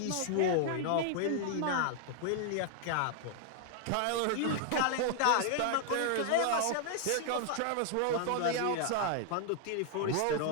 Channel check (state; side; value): different; both; correlation 0.00